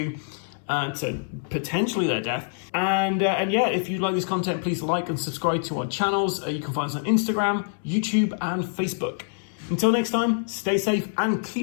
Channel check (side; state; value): right; silent; 61 dB below the other